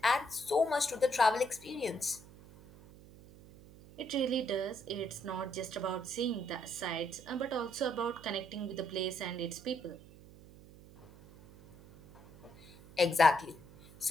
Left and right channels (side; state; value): right; noise; hum, 20 dB below the sound